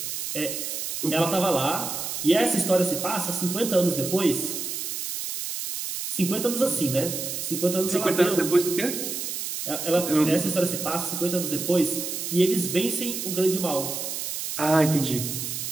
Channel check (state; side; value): noise; right; hiss, 4 dB below the sound